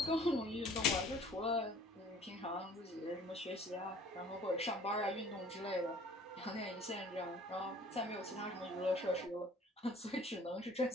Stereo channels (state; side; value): normal; both; correlation 0.52